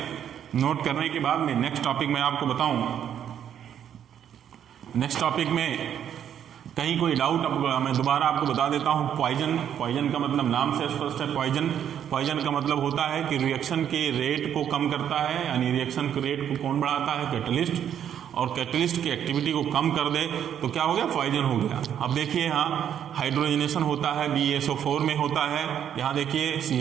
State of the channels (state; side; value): quieter; left; 9.4 dB